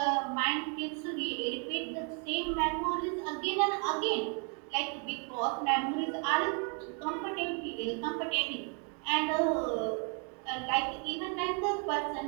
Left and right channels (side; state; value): left; quieter; 38.0 dB